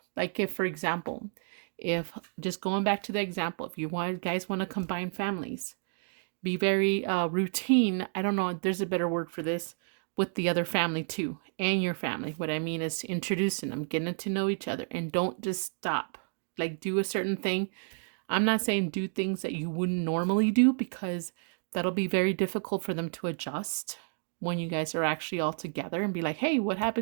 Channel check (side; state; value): left; silent; 57 dB below the other